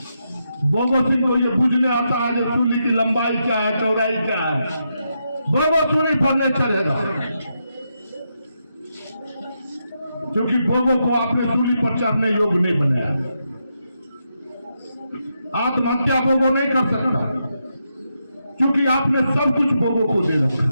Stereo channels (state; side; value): inverted; both; correlation -0.83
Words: बोगो सिंह को ये बुझने आता है जो सूली की लंबाई क्या है, चौड़ाई क्या है। बोगो सूली पर नहीं चलेगा क्योंकि बोगो को आपने सूली पर चढ़ने योग्य नहीं बनाया। आत्महत्या बोगो नहीं कर सकता क्योंकि आपने सब कुछ बोगो को दे